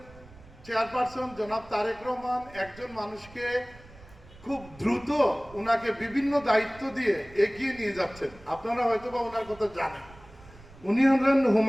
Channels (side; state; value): right; noise; rumble, 22 dB below the sound